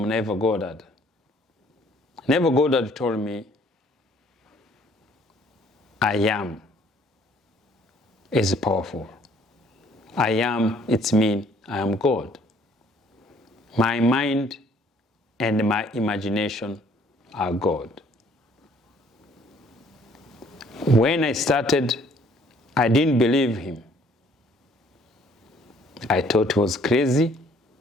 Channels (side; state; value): both; normal; correlation 0.60